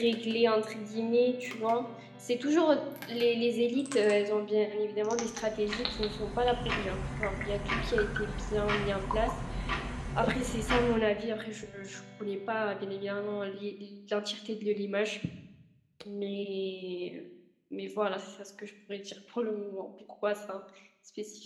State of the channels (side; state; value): both; identical; correlation 1.00